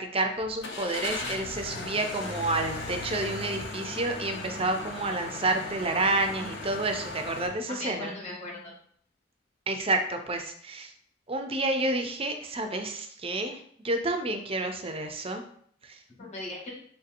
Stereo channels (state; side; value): normal; both; correlation 0.01